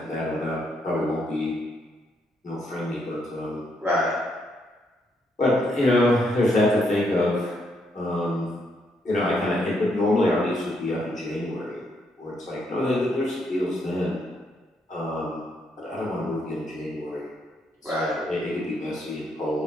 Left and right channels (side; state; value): both; normal; correlation 0.76